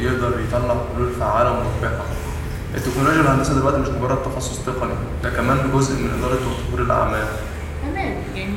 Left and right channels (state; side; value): identical; both; correlation 1.00